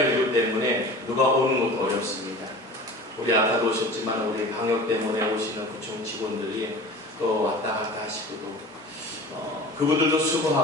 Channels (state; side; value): normal; both; correlation 0.38